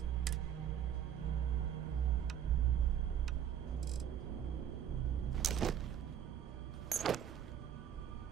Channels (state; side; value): quieter; left; 9.5 dB